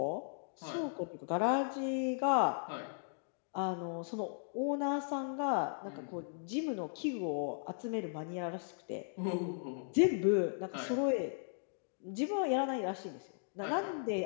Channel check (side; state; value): right; silent; digital silence